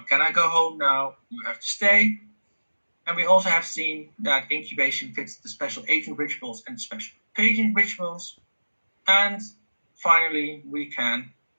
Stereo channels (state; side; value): inverted; both; correlation -1.00